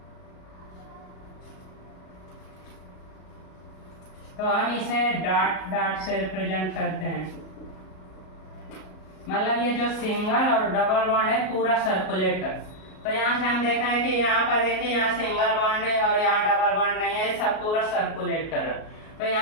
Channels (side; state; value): right; late; 38 ms